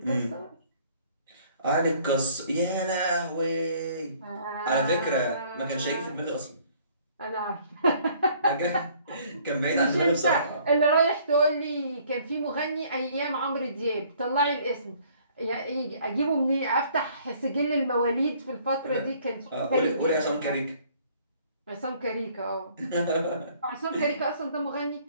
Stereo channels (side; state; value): both; inverted; correlation -0.59